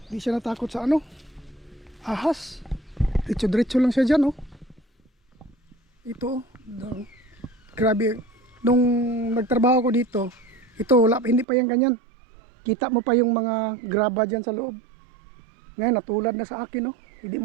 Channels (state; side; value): drops out; left; at 11.5 s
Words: hindi siya natakot sa ano, ahas. Diretso-diretso lang siya dyan, oh. Ito, oh. Grabe. Nung nagtrabaho ko dito, ito, hindi pa yan ganyan. Kita mo pa yung mga graba dyan sa loob. Ngayon, natulad na sa akin, oh. Hindi